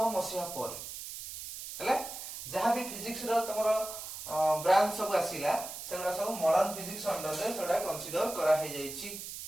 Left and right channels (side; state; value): right; noise; hiss, 9 dB below the sound